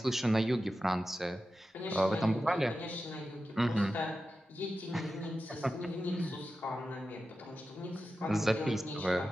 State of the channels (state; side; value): normal; both; correlation 0.92